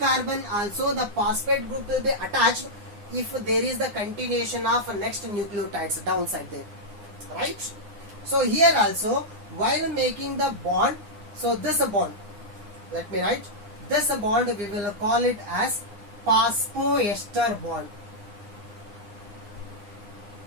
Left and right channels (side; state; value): left; late; 9.8 ms